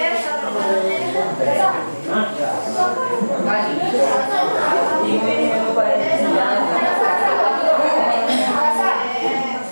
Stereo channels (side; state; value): both; inverted; correlation -1.00